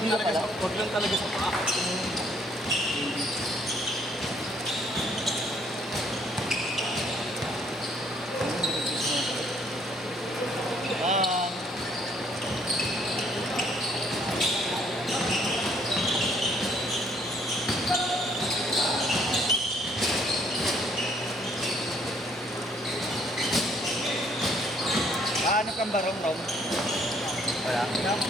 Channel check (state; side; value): normal; both; correlation 0.65